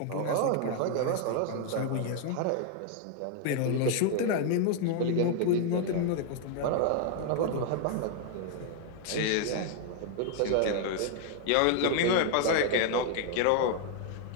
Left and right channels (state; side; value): different; both; correlation 0.00